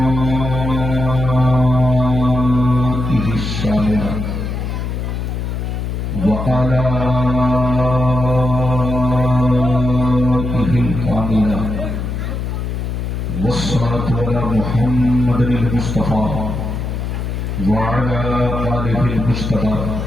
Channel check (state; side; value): noise; left; hum, 3 dB below the sound